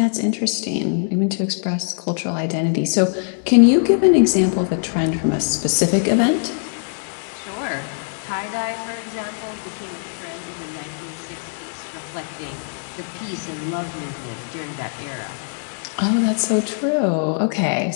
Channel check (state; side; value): silent; right; digital silence